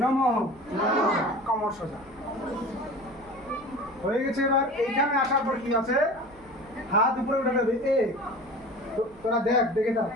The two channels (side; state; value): right; noise; hum, 25 dB below the sound